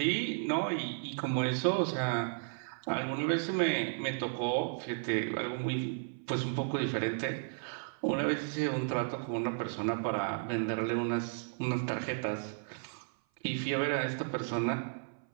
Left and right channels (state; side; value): silent; left; 55 dB below the other